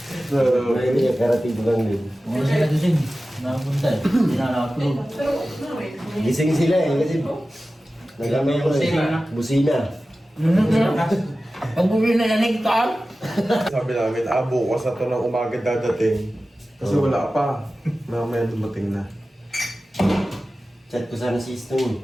Ay, hindi, karating lang din. Wala siya nagising. Nakapunta eh. Hindi na nakatulog. Gising sila eh, kasi... Nagamay ko eh. Busina. Pag bumili na naligtaan. Sabi namin, bukas na to ng umaga dadating. Kasi wala pa. Mamaya dumating na. Chat ko sana si Stone.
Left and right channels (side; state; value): both; normal; correlation 0.95